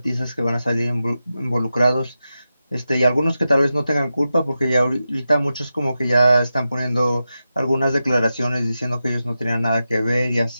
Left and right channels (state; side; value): inverted; both; correlation -0.91